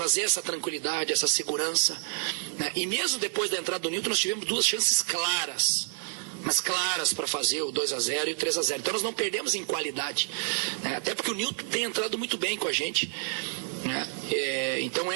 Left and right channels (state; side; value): silent; left; 59 dB below the other